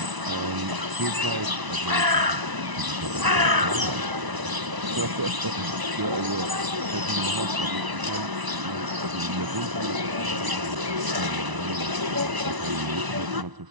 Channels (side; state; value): left; late; 1.0 ms